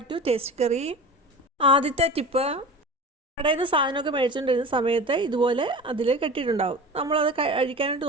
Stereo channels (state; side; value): normal; both; correlation 0.34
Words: to Tasty Curry. ആദ്യത്തെ ടിപ്പ്, കടയിൽ നിന്ന് സാധനമൊക്കെ മേടിച്ചുകൊണ്ടിരുന്ന സമയത്ത് ഇതുപോലെ അതിൽ കെട്ടിയിട്ടുണ്ടാവും. നമ്മളത് അഴിക്കാനായിട്ട്